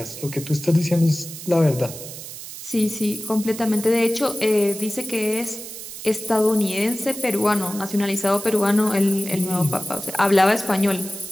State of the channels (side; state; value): right; noise; hiss, 12 dB below the sound